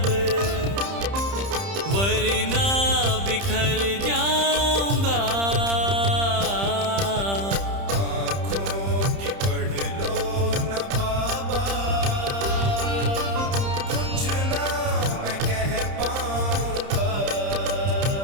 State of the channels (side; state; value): left; late; 30 ms